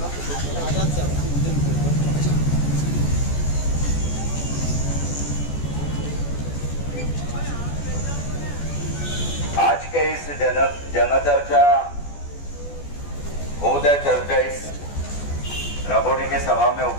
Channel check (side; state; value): right; late; 14 ms